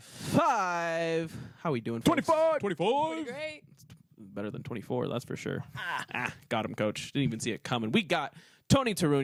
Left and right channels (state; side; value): identical; both; correlation 1.00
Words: How are we doing, folks? 25! 25! Great. Better than 24, that's for sure. Got him, coach. Didn't even see it coming. We got Tony